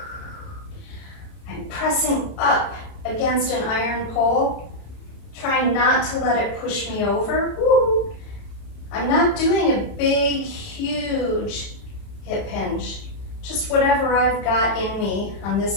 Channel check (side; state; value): right; late; 31 ms